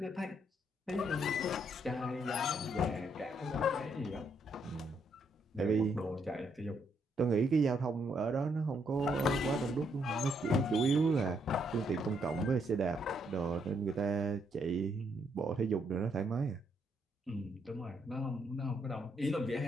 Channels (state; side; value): normal; both; correlation 0.74